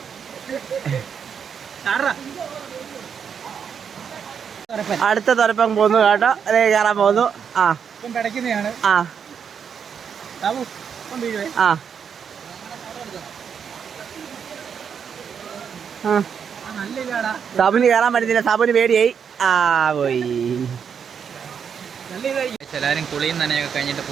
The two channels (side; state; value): left; quieter; 7.2 dB